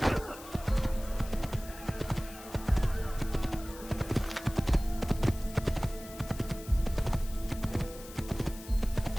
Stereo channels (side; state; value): left; noise; hiss, 16 dB below the sound